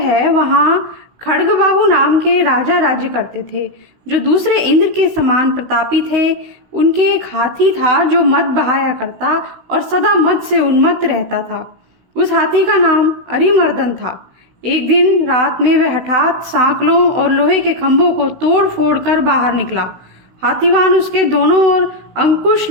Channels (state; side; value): late; left; 16 ms